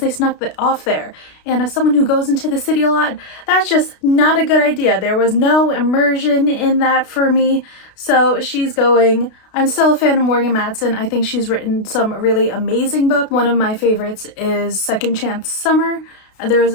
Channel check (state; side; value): late; right; 32 ms